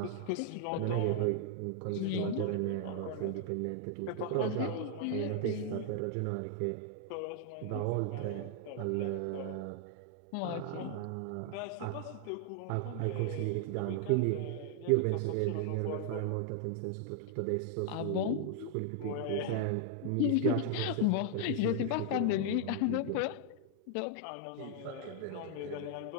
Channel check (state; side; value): different; both; correlation 0.00